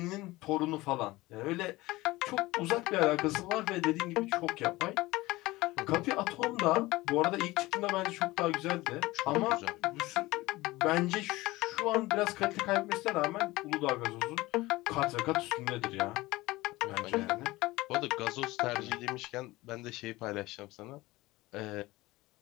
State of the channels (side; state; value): right; quieter; 19.6 dB